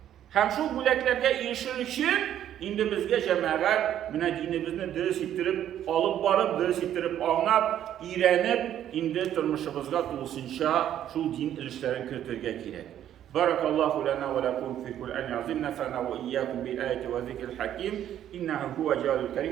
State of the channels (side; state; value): left; quieter; 10.9 dB